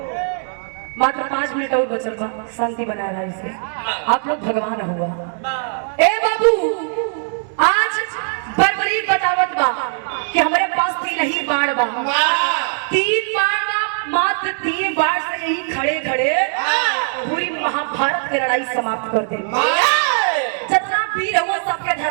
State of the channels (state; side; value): silent; left; digital silence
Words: मात्र 5 मिनट और बचल बा, शांति बना रहा इसे, आप लोग भगवान हुआ। ए बाबू आज बर्बरी बतावत बा कि हमारे पास 3 ही बाण बा, 3 बाण बा मात्र 3 बार से यही खड़े खड़े पूरी महाभारत की लड़ाई समाप्त कर दे। जितना वीर हुआ सबके